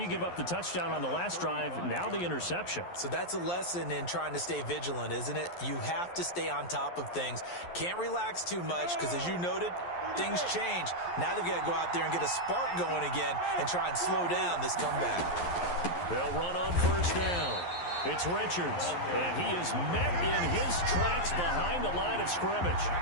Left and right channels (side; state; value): right; late; 11 ms